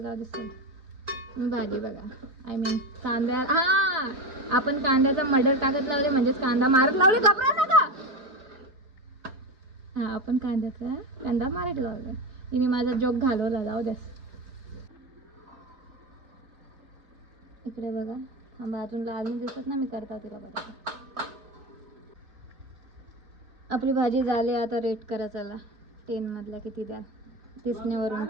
दिसतं तुम्ही भाजी बघा. आय मीन कांद्या, हा आपण कांद्याचा मडर टाकत लावले म्हणजेच कांदा मारत लावले. घाबरा नका. हा आपण कांदा मारत लावला. तिने माझा जोक घालवला. जाऊ द्यास. इकडे बघा, थांबा अजून लाल दिसत ना, मी करता तिला बघा. आपली भाजी झाली. आता रेट करा चला 10 मधला किती द्या, दिसण्यावरून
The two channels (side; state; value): left; late; 3.4 ms